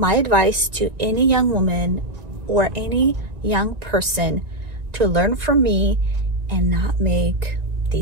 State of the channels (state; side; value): late; left; 1.9 ms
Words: advice to any young woman or any young person to learn from me and not make